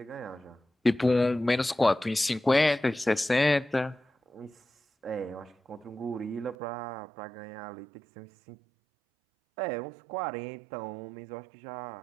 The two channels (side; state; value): left; drops out; at 6.6 s